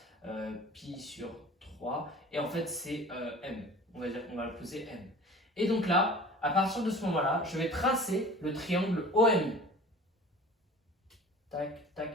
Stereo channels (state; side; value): normal; both; correlation 0.42